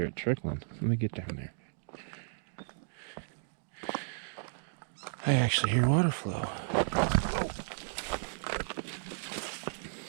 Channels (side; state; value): left; silent; digital silence